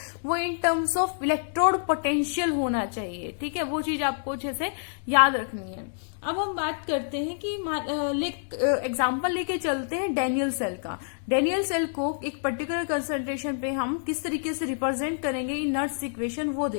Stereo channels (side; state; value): right; silent; digital silence